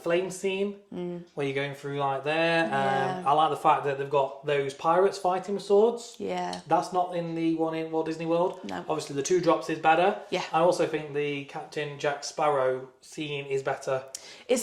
flame scene where you're going through like there. I like the fact that they've got those pirates fighting with swords. Yeah. That's not in the one in Walt Disney World. No. Obviously, the 2 drops is better. Yeah. I also think the Captain Jack Sparrow scene is better.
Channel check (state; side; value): identical; both; correlation 1.00